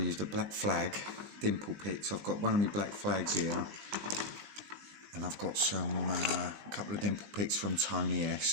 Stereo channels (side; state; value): left; late; 20 ms